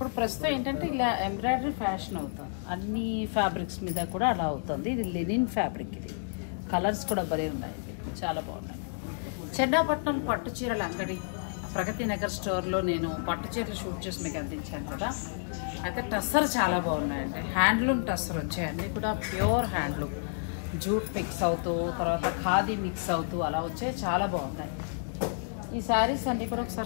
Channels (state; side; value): silent; right; digital silence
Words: ప్రస్తుతం ఏంటంటే ఇలా ఎంబ్రాయిడరీ ఫ్యాషన్ అవుతుంది, అన్ని ఫ్యాబ్రిక్స్ మీద కూడా అలా అవుతుంది. ఇది లినిన్ ఫ్యాబ్రిక్, ఇది కలర్స్ కూడా భలే ఉన్నాయి, చాలా బాగున్నాయి. చెన్నాపట్నం పట్టు చీరల అంగడి ప్రగతి నగర్ స్టోర్లో నేను పట్టు చీరలు షూట్ చేసి మీకు అందించాను కదా. అయితే టస్సర్ చాలా బాగున్నాయండి, హ్యాండ్లూమ్ టస్సర్ వచ్చాయి, అన్నీ కూడా ప్యూర్ హ్యాండ్లూమ్, జూట్ మిక్స్ అవుతూ తర్వాత ఖాదీ మిక్స్ అవుతూ అలా వచ్చాయి, చాలా బాగున్నాయి. ఈ శారీస్ అన్నీ కూడా